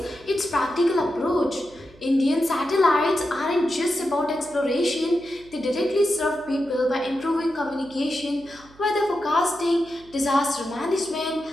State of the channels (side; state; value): right; noise; hum, 25 dB below the sound